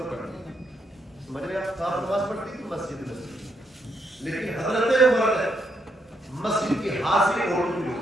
پڑھتی, سمجھ رہے آپ, آپ نماز پڑھتی تھی مسجد میں, لیکن حضرت عمر نے مسجد کی حاضری عورتوں کی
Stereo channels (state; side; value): normal; both; correlation 0.77